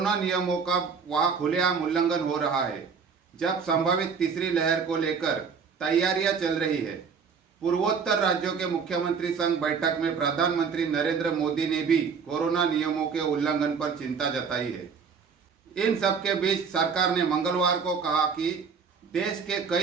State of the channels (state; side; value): quieter; left; 5.9 dB